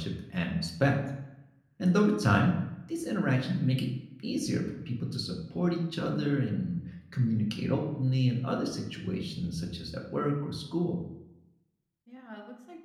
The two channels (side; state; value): both; identical; correlation 1.00